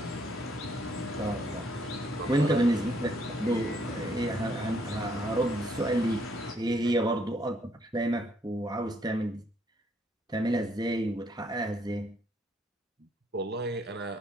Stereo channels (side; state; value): both; normal; correlation 0.69